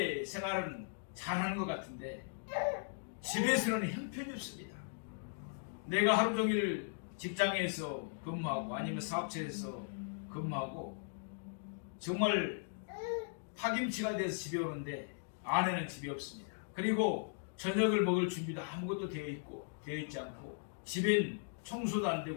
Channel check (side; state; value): right; silent; digital silence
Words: 생활은 잘하는 것 같은데 집에서는 형편이 없습니다. 내가 하루 종일 직장에서 근무하고 아니면 사업체에서 근무하고 정말 파김치가 돼서 집에 오는데 아내는 집에 없습니다. 그리고 저녁을 먹을 준비도 아무것도 되어 있지 않고 집엔 청소도 안